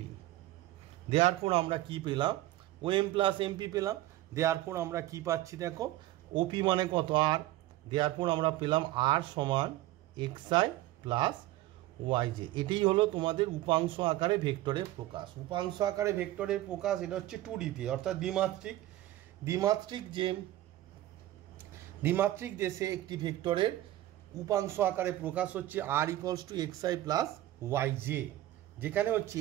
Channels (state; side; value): quieter; left; 15.4 dB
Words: দেয়ারপর আমরা কি পেলাম, ওএম প্লাস এমপি পেলাম। দেয়ারপর আমরা কি পাচ্ছি দেখো, ওপি মানে কত আর, দেয়ারপর আমরা পেলাম আর সমান এক্সআই প্লাস ওয়াইজে। এটাই হলো তোমাদের উপাংশ আকারে ভেক্টরের প্রকাশ। উপাংশ আকারে ভেক্টরের প্রকাশ এটা হচ্ছে 2Dতে, অর্থাৎ দ্বিমাত্রিক। দ্বিমাত্রিক দেশে একটি ভেক্টরের উপাংশ আকারে প্রকাশ হচ্ছে আর ইকুয়ালস টু এক্সআই প্লাস ওয়াইজে, যেখানে হচ্ছে